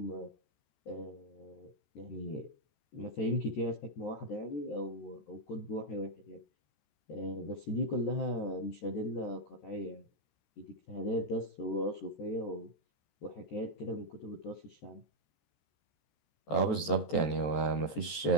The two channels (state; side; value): late; right; 14 ms